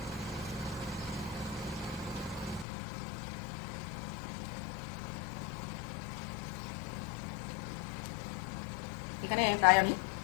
এখানে প্রায় আমি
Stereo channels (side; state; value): right; drops out; at 2.7 s